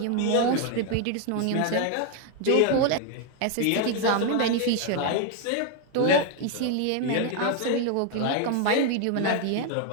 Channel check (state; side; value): different; both; correlation 0.00